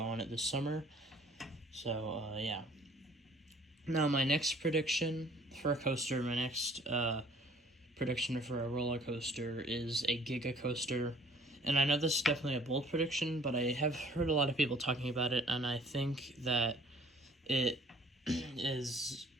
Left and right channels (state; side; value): normal; both; correlation 0.55